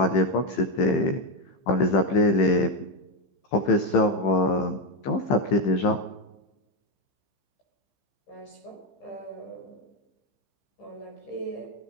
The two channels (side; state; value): right; late; 15 ms